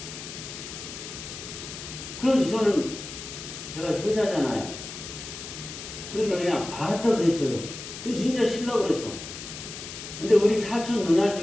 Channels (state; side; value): noise; left; hiss, 10 dB below the sound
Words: 그래서 저는 제가 효자잖아요. 그러니까 그냥 알았다고 했어요. 그 진짜 쉬려고 그랬어. 근데 우리 사촌 누나